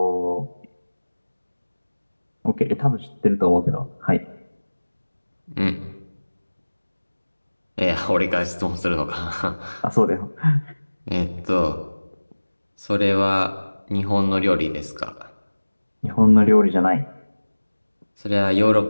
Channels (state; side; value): inverted; both; correlation -1.00